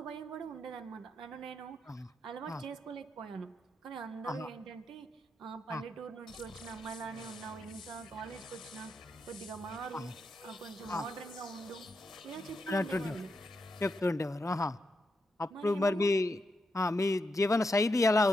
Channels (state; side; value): normal; both; correlation 0.84